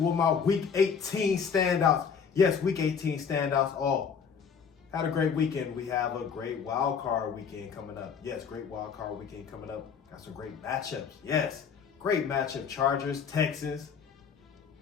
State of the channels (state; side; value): quieter; right; 6.6 dB